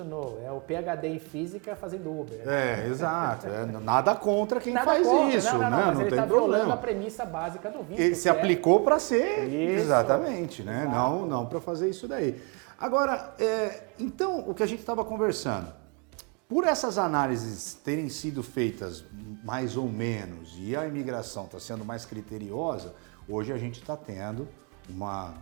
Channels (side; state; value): left; quieter; 32.5 dB